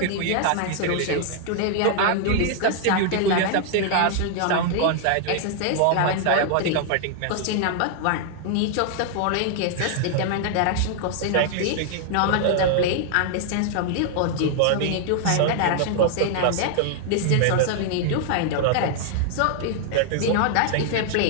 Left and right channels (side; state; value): both; different; correlation 0.00